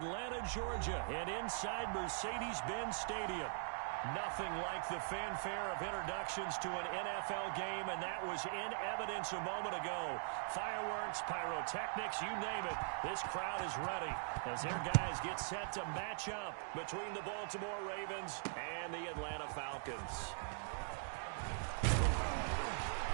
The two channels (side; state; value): left; silent; digital silence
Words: Georgia, and inside Mercedes-Benz Stadium. Nothing like the fanfare of introductions to an NFL game, and that was in evidence a moment ago. Fireworks, pyrotechnics, you name it. This crowd is ready as their guys get set to match up between the Baltimore Ravens and the Atlanta Falcons.